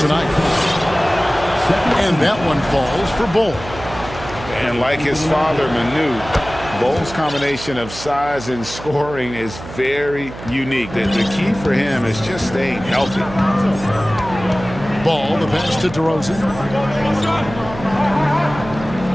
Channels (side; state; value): right; noise; hum, 13 dB below the sound